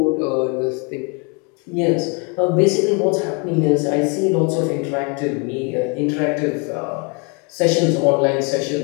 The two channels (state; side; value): quieter; right; 33.8 dB